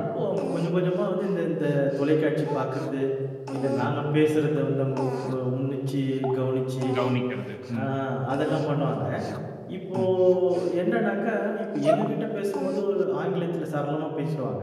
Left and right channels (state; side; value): identical; both; correlation 1.00